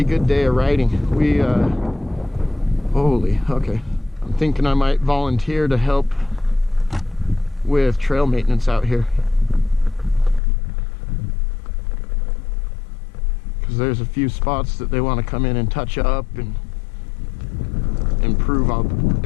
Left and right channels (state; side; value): drops out; right; at 10.4 s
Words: good day of riding. We, holy, okay. I'm thinking I might volunteer to help with trail maintenance out here. Because there's a few spots that they want to come in and touch up and improve